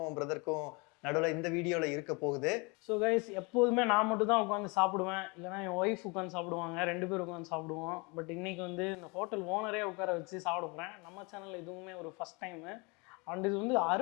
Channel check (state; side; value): quieter; right; 29.1 dB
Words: பிரதருக்கும் நடுவில் இந்த வீடியோவில் இருக்க போகுது. ஸோ கைஸ், எப்போதுமே நான் மட்டும் தான் உட்காந்து சாப்பிடுவேன், இல்லைனா என் ஒய்ஃப் உட்காந்து சாப்பிடுவாங்க. 2 பேர் உட்காந்து சாப்பிடுவோம். பட் இன்றைக்கி வந்து இந்த ஹோட்டல் ஓனரே உட்கார வச்சு சாப்பிட போகிறேன். நம்ம சேனலில் இதுவுமே ஒரு ஃபஸ்ட் டைமு. அண்ட் இது வந்து